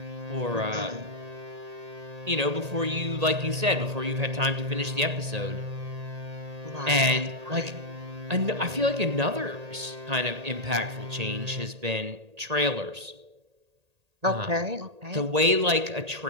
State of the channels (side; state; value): left; late; 1.8 ms